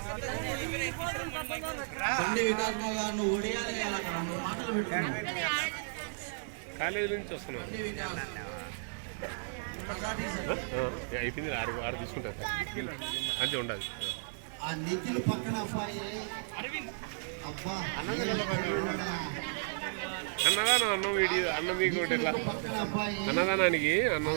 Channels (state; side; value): silent; left; digital silence